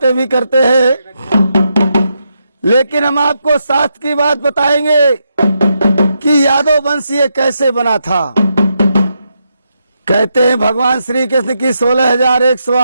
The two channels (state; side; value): inverted; both; correlation -0.82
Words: भी करते हैं, लेकिन हम आपको साथ की बात बताएंगे कि यादव वंश ये कैसे बना था। कहते हैं भगवान श्री कृष्ण की